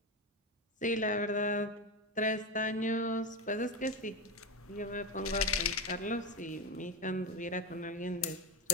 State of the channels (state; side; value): normal; both; correlation 0.16